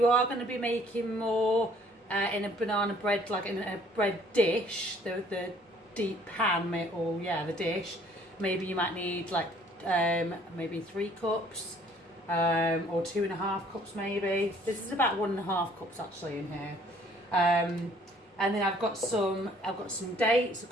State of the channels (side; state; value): both; normal; correlation 0.59